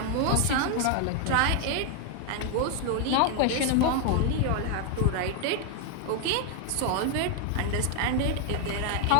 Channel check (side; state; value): both; different; correlation 0.00